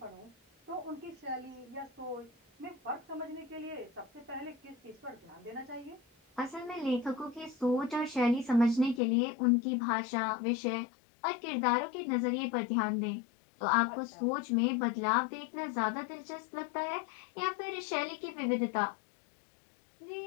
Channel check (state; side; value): drops out; right; at 9.0 s